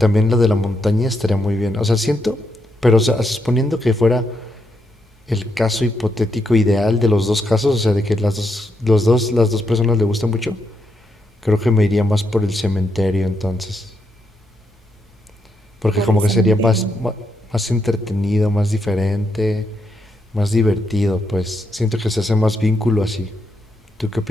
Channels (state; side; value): normal; both; correlation 0.80